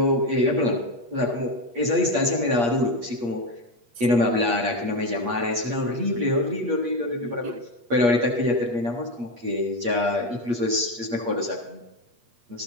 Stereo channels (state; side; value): late; left; 8.4 ms